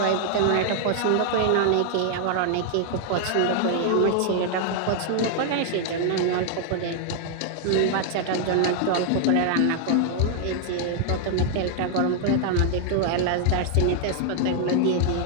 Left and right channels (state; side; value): different; both; correlation 0.00